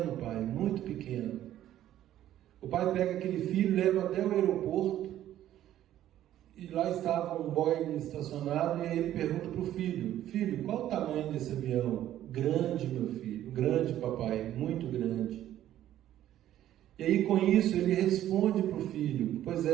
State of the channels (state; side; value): quieter; left; 12.4 dB